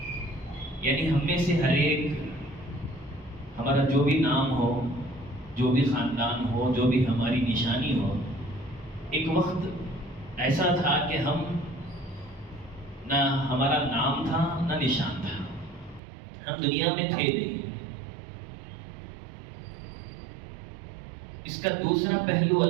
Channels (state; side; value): drops out; left; at 16.0 s